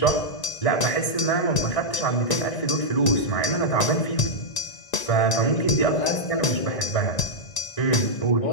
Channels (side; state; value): right; late; 1.9 ms